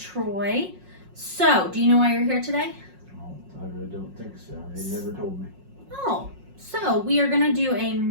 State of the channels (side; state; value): left; late; 5.5 ms